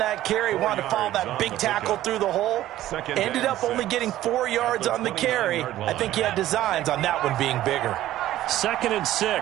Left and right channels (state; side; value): quieter; left; 14.1 dB